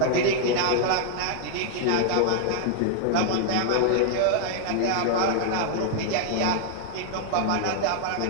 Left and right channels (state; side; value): different; both; correlation 0.00